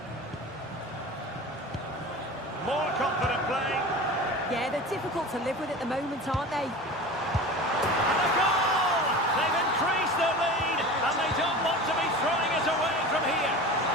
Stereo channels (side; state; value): both; normal; correlation 0.34